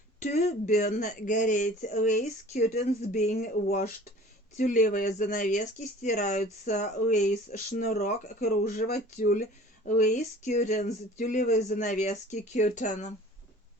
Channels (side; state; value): both; normal; correlation 0.46